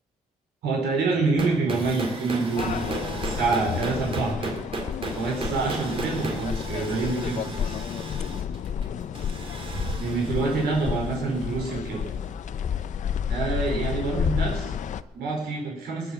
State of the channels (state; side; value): normal; both; correlation 0.60